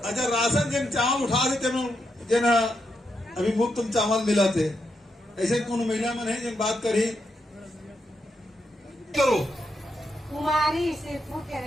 अच्छा, राशन जन चावल उठा देते जन अभी मुफ्त तुम चावल मिला थे, ऐसे कौन महिला मन है जन बात करी करो? कुमारी सिरपुर के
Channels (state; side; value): normal; both; correlation 0.83